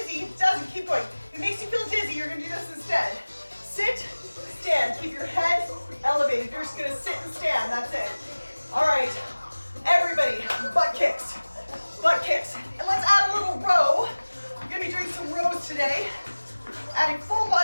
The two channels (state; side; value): inverted; both; correlation -1.00